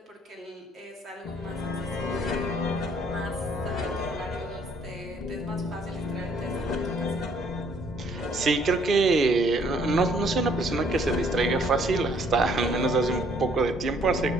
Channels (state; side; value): normal; both; correlation 0.64